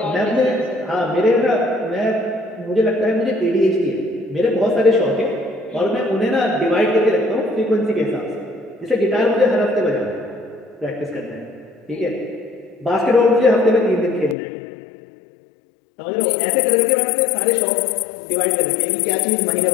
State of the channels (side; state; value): right; drops out; at 14.4 s